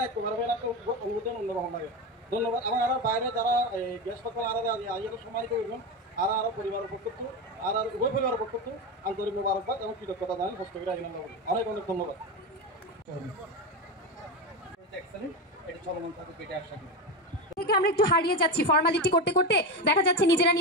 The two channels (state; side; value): normal; both; correlation 0.18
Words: এক অনুভূতি অন্যরকম লাগে। ধন্যবাদ। এবং আর বাইরে যারা গ্যাস পাত্র আর আইয়াকে সম্মানিত করবেন আর আরও পরিবারের পক্ষ আর উভয় পরিবারের পক্ষ আন্তরিক মোবারকবাদ এবং কৃতজ্ঞতা জানাই হস্তগিরি আইন অনেক অনেক ধন্যবাদ। এটা চলমান থাকে পেটে আশা করি থেকে আমরা একটু হারিয়ে যাচ্ছি ফর্মালিটি করতে করতে, দেখা যাচ্ছে নিজেরা